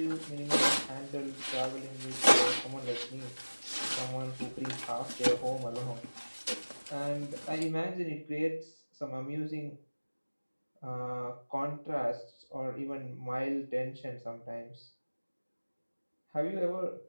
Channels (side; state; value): both; inverted; correlation -1.00